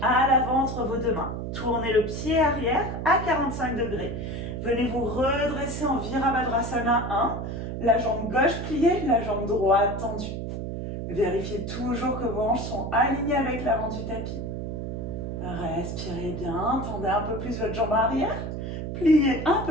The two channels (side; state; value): right; noise; hum, 5 dB below the sound